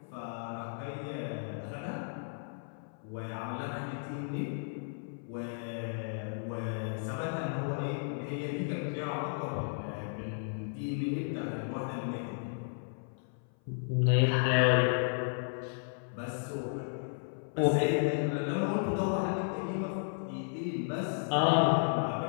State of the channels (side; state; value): right; silent; 55 dB below the other